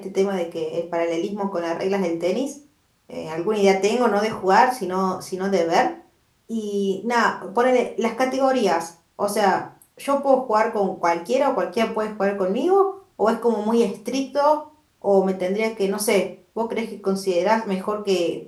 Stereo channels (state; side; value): identical; both; correlation 1.00